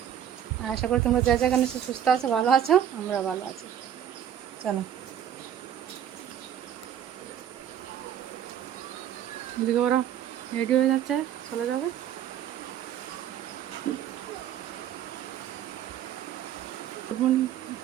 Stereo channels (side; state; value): left; quieter; 9.9 dB